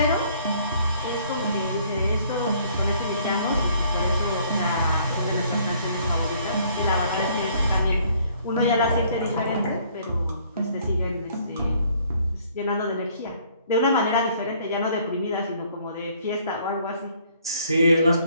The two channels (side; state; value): both; inverted; correlation -0.61